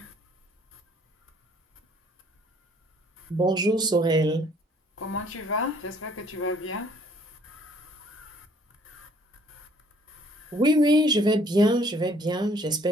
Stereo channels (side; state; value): both; normal; correlation 0.60